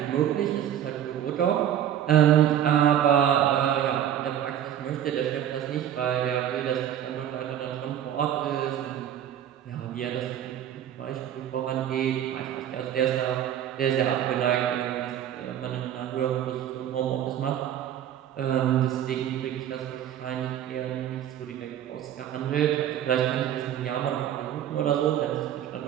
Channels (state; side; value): quieter; left; 10.5 dB